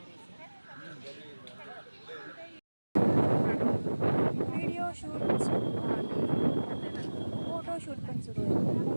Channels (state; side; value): inverted; both; correlation -1.00